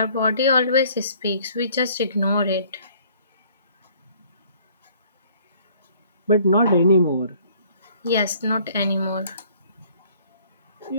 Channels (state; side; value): inverted; both; correlation -0.58